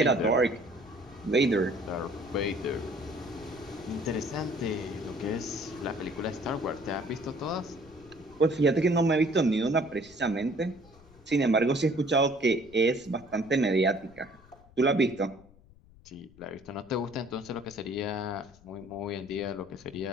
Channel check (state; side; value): noise; left; rumble, 25 dB below the sound